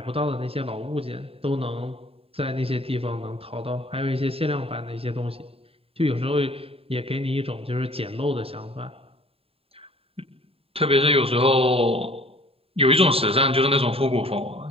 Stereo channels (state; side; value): late; left; 0.28 ms